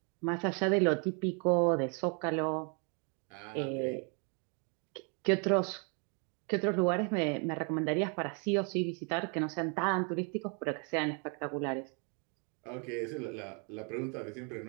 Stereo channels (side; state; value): left; quieter; 36.9 dB